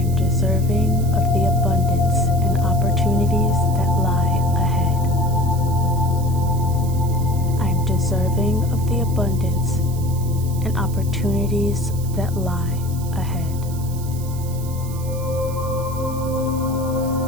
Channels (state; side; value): noise; right; hiss, 16 dB below the sound